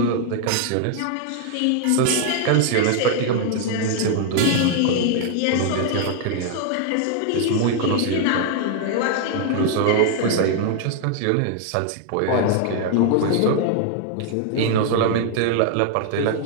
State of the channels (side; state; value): both; different; correlation 0.00